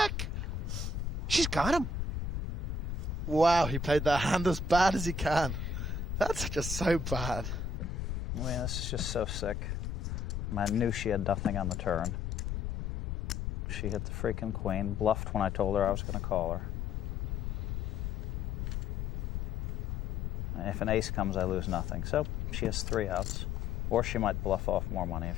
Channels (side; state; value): left; noise; rumble, 2 dB below the sound